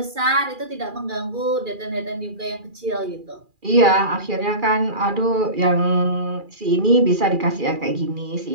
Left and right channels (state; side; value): late; left; 2.4 ms